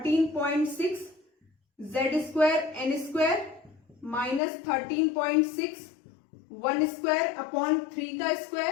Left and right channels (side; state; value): right; drops out; at 4.4 s